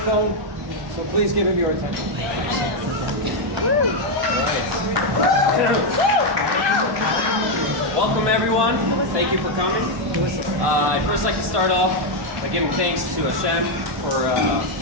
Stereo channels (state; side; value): late; left; 1.2 ms